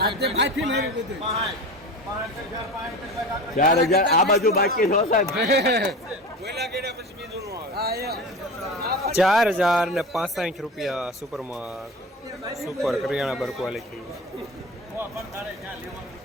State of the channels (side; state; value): both; normal; correlation 0.31